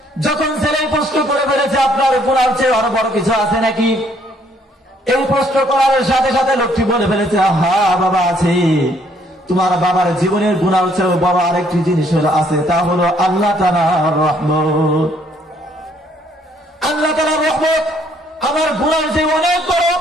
যখন ছেলে প্রশ্ন করে ফেলেছে আপনার গুনার চেয়ে আরো বড় কিছু আছে নাকি, এই প্রশ্ন করার সাথে সাথে লোকটি বলে ফেলেছে, হ্যাঁ বাবা আছে। তোমার বাবার জীবনের গুনার চেয়ে বড় আরেকটি জিনিস আছে, তা হলো আল্লাহ তাআলার রহমত। আল্লাহ তাআলার রহমত আমার গুনার চেয়ে অনেক বড়।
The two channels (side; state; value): both; normal; correlation 0.66